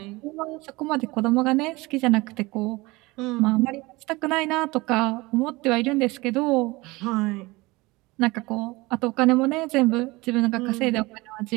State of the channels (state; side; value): quieter; left; 22.3 dB